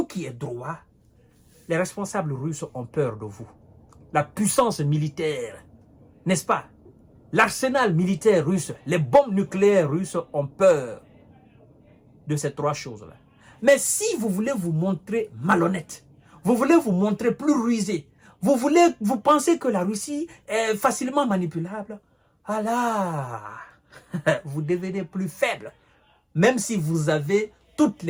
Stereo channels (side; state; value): both; identical; correlation 1.00